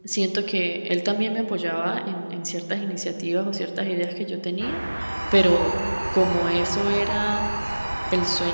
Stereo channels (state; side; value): inverted; both; correlation -1.00